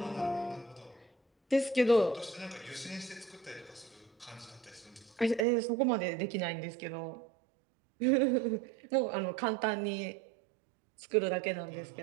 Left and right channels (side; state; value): left; drops out; at 5.4 s